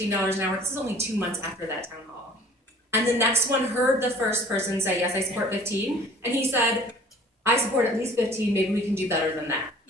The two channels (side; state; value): both; normal; correlation 0.50